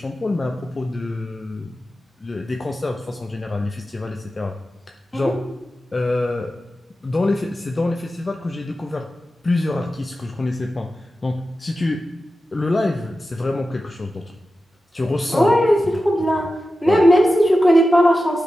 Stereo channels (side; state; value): both; normal; correlation 0.93